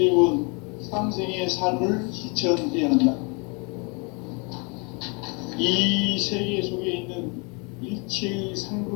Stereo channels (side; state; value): right; quieter; 32.6 dB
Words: 상생의 삶을 실천해야 한다. 이 세계 속에 있는 일체의